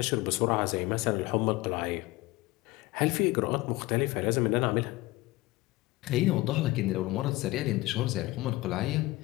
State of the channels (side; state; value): right; quieter; 20.2 dB